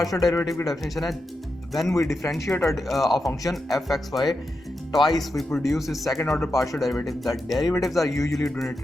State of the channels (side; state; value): both; normal; correlation 0.88